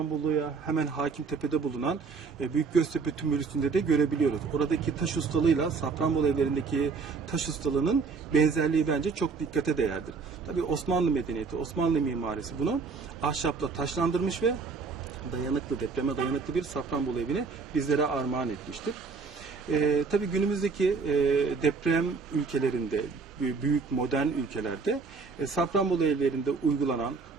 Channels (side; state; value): left; quieter; 4.8 dB